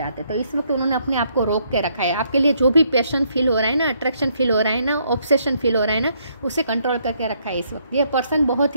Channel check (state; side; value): inverted; both; correlation -0.72